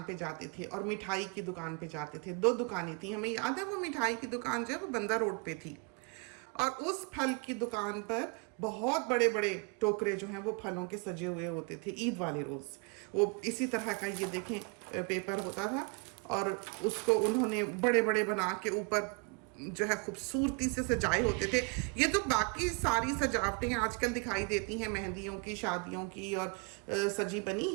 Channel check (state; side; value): quieter; left; 31.3 dB